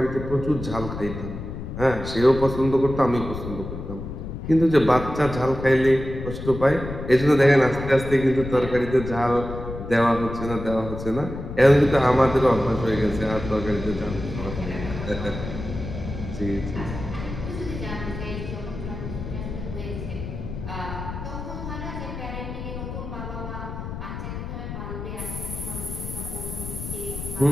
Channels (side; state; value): left; noise; rumble, 8 dB below the sound